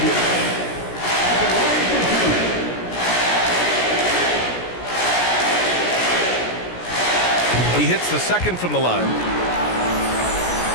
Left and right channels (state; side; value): late; right; 17 ms